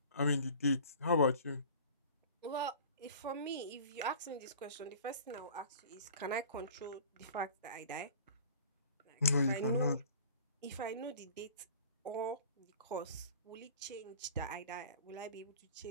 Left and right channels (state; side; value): inverted; both; correlation -0.43